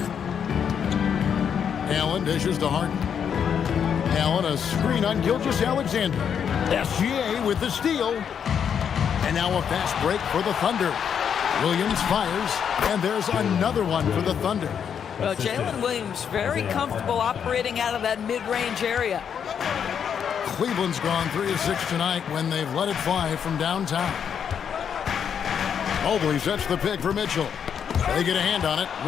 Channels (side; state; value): right; quieter; 7.8 dB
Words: Allen dishes to Harden. Allen, a screen on Gilgeous-Alexander. SGA with the steal. And now a fast break for the Thunder. Williams fires, and there's another one for the Thunder. Well, Jalen Williams very comfortable operating out of that mid-range area. Cleveland's gone 3 of 6 tonight when they've let it fly from downtown. Mobley sets the pick for Mitchell. They get a hand on it.